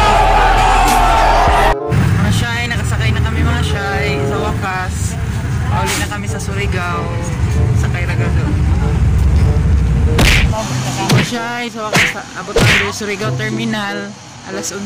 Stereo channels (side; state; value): both; identical; correlation 1.00